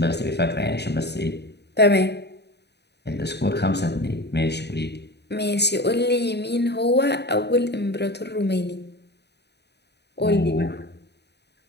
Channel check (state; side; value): late; right; 0.49 ms